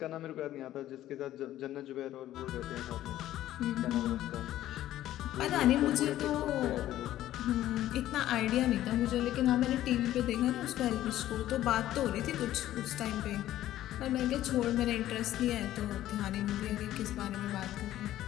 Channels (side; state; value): right; quieter; 13.5 dB